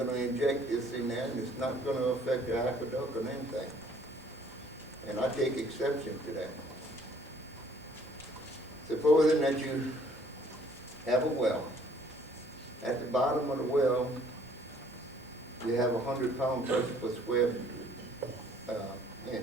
to inject this in there, and it's not going to affect the aqueduct or anything. And I take exception to that. Supposing that you have a well. At the bottom of the well, you have 100-pound pressure per square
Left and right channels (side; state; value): both; normal; correlation 0.59